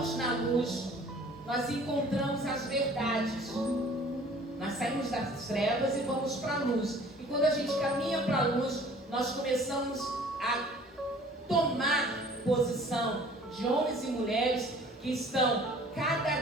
na luz, nós encontramos as verdades. Nós saímos das trevas e vamos para a luz. E quando a gente caminha para a luz, nós começamos a tomar posição de homens e mulheres que estão cada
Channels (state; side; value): normal; both; correlation 0.51